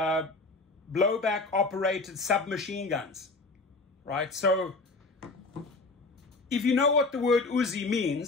operated submachine guns, right? So if you know what the word Uzi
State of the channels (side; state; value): right; quieter; 3.5 dB